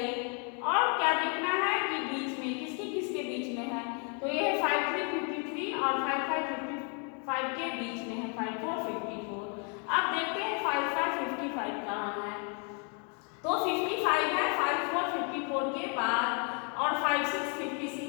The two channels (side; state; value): right; quieter; 38.1 dB